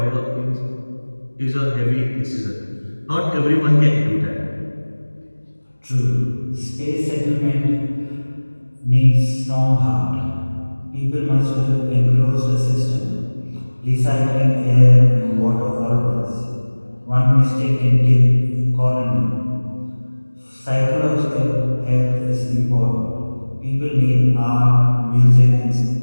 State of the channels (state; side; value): inverted; both; correlation -1.00